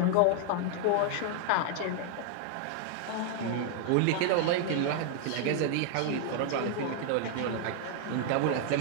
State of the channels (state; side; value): different; both; correlation 0.00